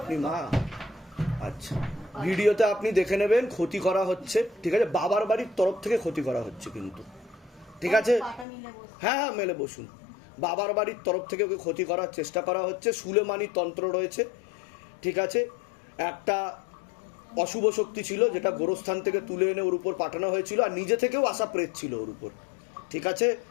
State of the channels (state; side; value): drops out; right; at 8.5 s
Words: মা? আচ্ছা, ভিডিওতে আপনি দেখে নেবেন ক্ষতি করা হচ্ছে, ঠিক আছে? বাবার বাড়ির তরফ থেকে ক্ষতি করা হচ্ছে কিন্তু, ঠিক আছে? হ্যাঁ হ্যাঁ, মেলে বসুন। বাবার বাড়ির তরফ থেকে ওকে ক্ষতি করার চেষ্টা করা হচ্ছে। সুলেমানি তন্ত্র রয়েছে, ঠিক আছে? একটা অশুভ শক্তি ছিল যেটা গোরস্থান থেকে তুলে এনে ওর উপর পাঠানো হয়েছিল, আর নিজে থেকেও আসা প্রেত ছিল ওর উপর, ঠিক আছে?